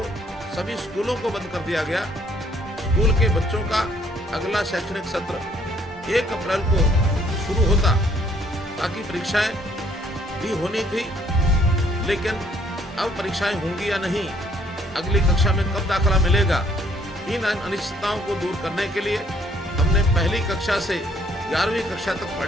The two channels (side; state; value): both; normal; correlation 0.64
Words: सभी स्कूलों को बंद कर दिया गया। स्कूल के बच्चों का अगला शैक्षणिक सत्र 1 अप्रैल को शुरू होता, ताकि परीक्षाएं भी होनी थी। लेकिन अब परीक्षाएं होंगी या नहीं, अगली कक्षा में कब दाखिला मिलेगा, इन अनिश्चितताओं को दूर करने के लिए हमने पहली कक्षा से 11वीं कक्षा तक